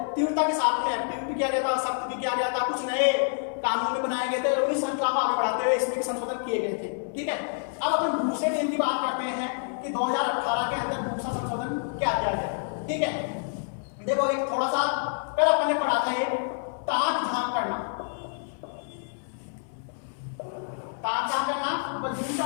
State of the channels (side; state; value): right; silent; 58 dB below the other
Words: तीव्रता के साथ में एक्टिव भी किया गया था, सख्त भी किया गया था, कुछ नए कानून भी बनाए गए थे, उन्हीं श्रृंखला को आगे बढ़ाते हुए इसमें भी संशोधन किए गए थे। ठीक है, अब अपन दूसरे नियम की बात करते हैं कि 2018 के अंदर दूसरा संशोधन क्या किया गया। ठीक है, देखो एक थोड़ा सा कल अपन ने पढ़ा था ये ताक झांक करना, ताक झांक करना, तो